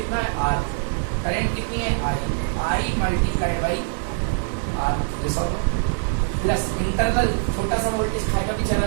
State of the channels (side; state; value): left; silent; 63 dB below the other